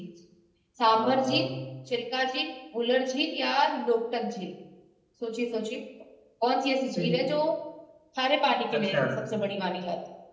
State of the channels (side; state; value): both; identical; correlation 1.00